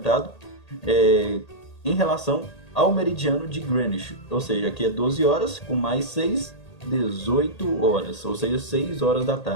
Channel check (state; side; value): late; right; 1.8 ms